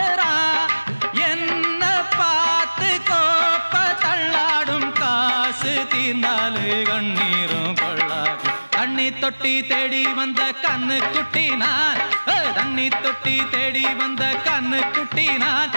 என்ன பார்த்து கோப்ப தள்ளாடும் காசு தீர்ந்தாலே கண்ணீரும் கொள்ளாது தண்ணி தொட்டி தேடி வந்த கண்ணு குட்டி நான் தண்ணி தொட்டி தேடி வந்த கண்ணு குட்டி நான்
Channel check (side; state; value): both; inverted; correlation -1.00